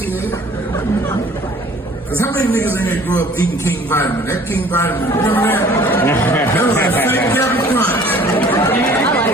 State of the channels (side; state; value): both; normal; correlation 0.52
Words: Cause how many niggas in there grew up eating King Vitamin? That King Vitamin, remember that? That was that fake Captain Crunch.